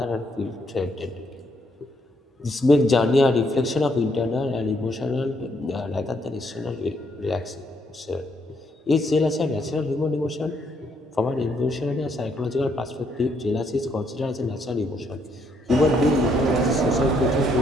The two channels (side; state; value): both; normal; correlation 0.72